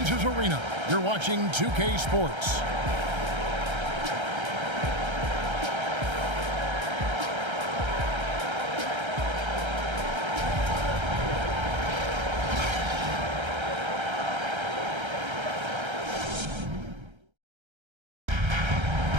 Arena, you're watching 2K Sports.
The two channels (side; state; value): left; late; 1.3 ms